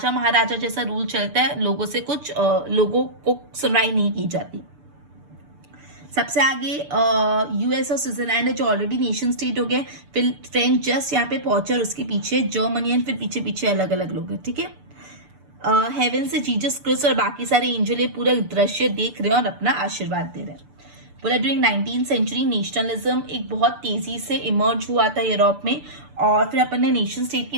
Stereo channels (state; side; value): late; left; 6.8 ms